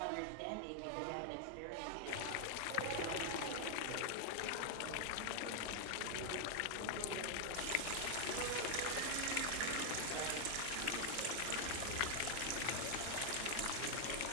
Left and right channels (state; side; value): different; both; correlation 0.00